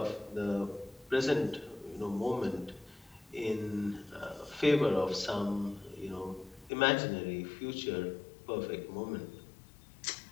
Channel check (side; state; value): right; drops out; at 6.7 s